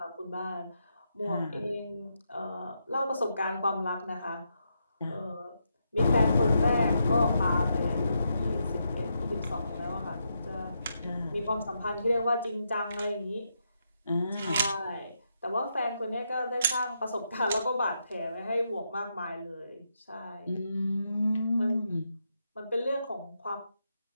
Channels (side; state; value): both; inverted; correlation -0.82